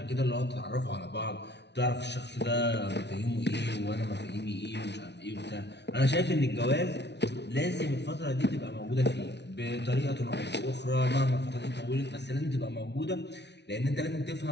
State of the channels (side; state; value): right; late; 0.50 ms